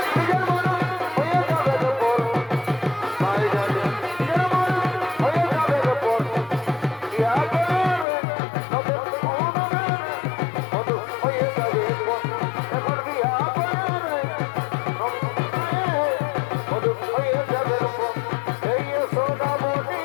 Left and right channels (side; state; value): right; drops out; at 8.1 s